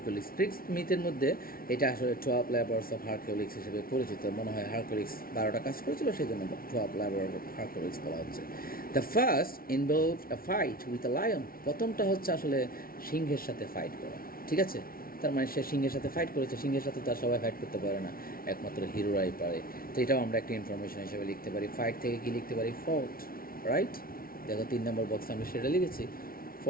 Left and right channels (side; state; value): right; late; 0.43 ms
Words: Greek মিথের মধ্যে এটা আসলে 12 labors of Hercules হিসেবে পরিচিত। মনে হয় হারকুলিস 12টা কাজ করেছিল, সেই জন্য 12 labors of Hercules বলা হচ্ছে। The first involved a fight with a lion. প্রথমটা হচ্ছে আসলে সিংহের সাথে ফাইট করা। ঠিক আছে, তার মানে সে সিংহের সাথে ফাইট করেছে। সিংহের সাথে তার সবাই ফাইট করতে পারে না, একমাত্র হিরোরাই পারে। তো এটাও আমরা একটা ইনফরমেশন হিসেবে লিখতে পারি। ফাইট থেকে কি লিখতে পারি, ফোর্ট, রাইট? দেখো 3 নম্বর বক্সে আমি সেটা লিখেছি,